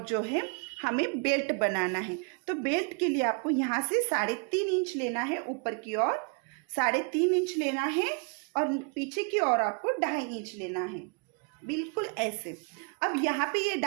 जो है हमें बेल्ट बनाना है। तो बेल्ट के लिए आपको यहाँ से 3.5 इंच लेना है, ऊपर की ओर 3.5 इंच लेना है और पीछे की ओर आपको 2.5 इंच लेना है बिल्कुल ऐसे। अब यहाँ पे ये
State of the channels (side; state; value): left; quieter; 35.4 dB